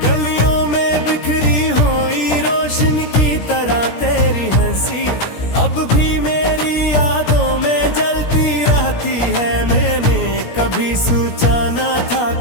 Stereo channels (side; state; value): right; late; 17 ms